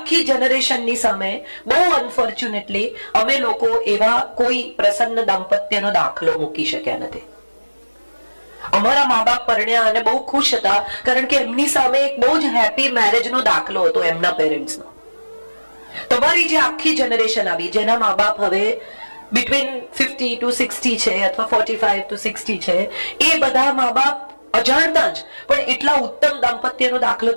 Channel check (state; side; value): inverted; both; correlation -1.00